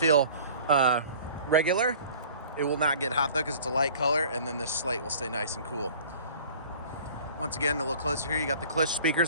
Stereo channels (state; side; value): inverted; both; correlation -0.47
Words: regular. It will not get hot though because it's a light color, and then this slate will stay nice and cool. Once again, a little closer here, you got the Klipsch speakers.